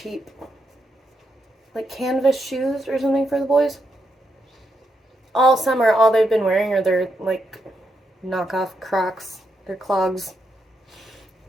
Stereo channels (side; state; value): both; normal; correlation 0.82